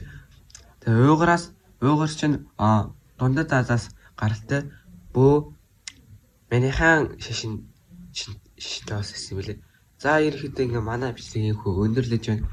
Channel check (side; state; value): both; identical; correlation 1.00